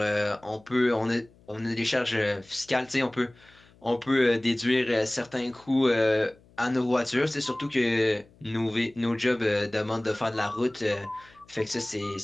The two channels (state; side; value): noise; left; hum, 28 dB below the sound